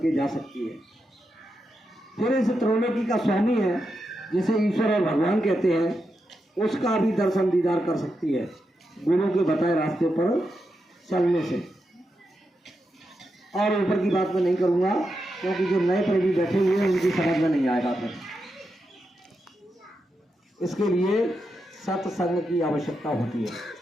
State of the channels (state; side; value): normal; both; correlation 0.86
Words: जा सकती है। फिर इस त्रैलोकी का स्वामी है, जिसे ईश्वर और भगवान कहते हैं, उसका भी दर्शन दीदार कर सकती है गुरु के बताए रास्ते पर चलने से। और ऊपर की बात मैं नहीं करूँगा, क्योंकि जो नए प्रेमी बैठे हुए हैं उनकी समझ में नहीं आएगा। फिर इसके लिए सत्संग की आवश्यकता होती है।